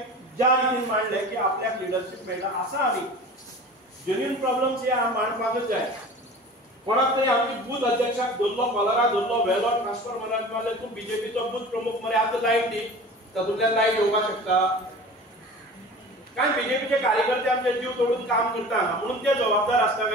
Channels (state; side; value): normal; both; correlation 0.39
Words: ज्या रितीन मांडले की आपल्याक लिडरशिप मेळटा आसा आमी जेन्युइन प्रॉब्लेम्स हे मांडपाकच जाय कोणाक तरी आमची बूथ अध्यक्षाक धरलो कॉलरा धरलो वेलो ट्रान्सफर म्हणत मारले तूं बीजेपीचो बूथ प्रमुख मरे आतां लायट दी तातूंतल्यान लायट येवपाक शकता कारण बीजेपीचे कार्यकर्ते आमचे जीव तोडून काम करता म्हणून ते जबाबदार आसता